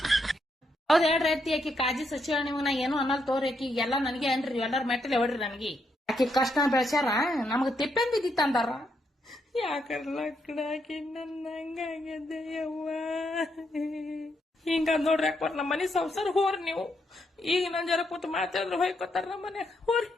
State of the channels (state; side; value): normal; both; correlation 0.78